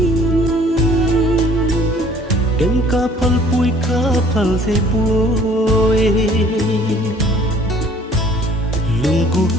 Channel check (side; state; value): both; normal; correlation 0.55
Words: ken ka phal se pui lung cuộc